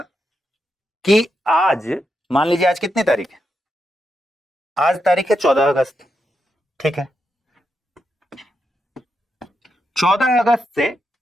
कि आज मान लीजिए आज कितनी तारीख है? आज तारीख है 14 अगस्त। ठीक है, 14 अगस्त से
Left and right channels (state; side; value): normal; both; correlation 0.84